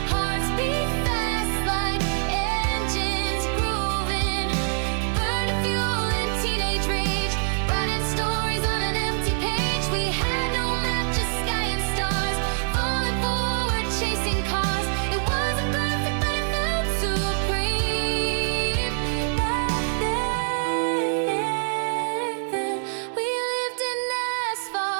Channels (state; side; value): silent; left; digital silence